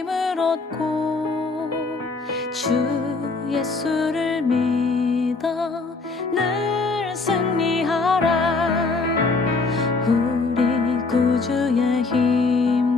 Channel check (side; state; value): right; quieter; 3.9 dB